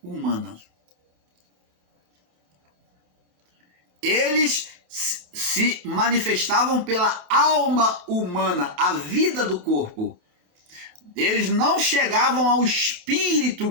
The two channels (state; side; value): late; left; 27 ms